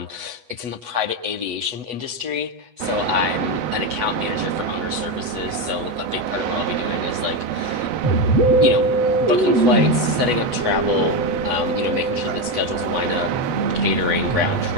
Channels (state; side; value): late; left; 8.1 ms